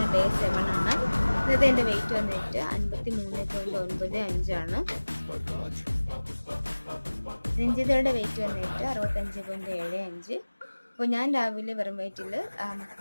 ഡേ 7 ആണ്. ഇന്നത്തെ എൻ്റെ വെയിറ്റ് വന്നിട്ട് 53.95 ആണ്. രഞ്ജിതയുടെ വെയിറ്റ് വന്നിട്ട് 65.75. അപ്പോൾ ഞാൻ രാവിലെ വെറും വയറ്റിൽ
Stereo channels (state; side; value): inverted; both; correlation -1.00